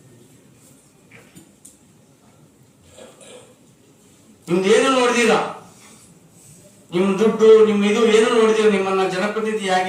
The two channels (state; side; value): identical; both; correlation 1.00